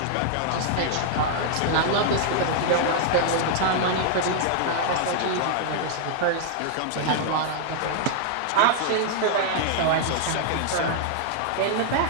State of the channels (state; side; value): different; both; correlation -0.01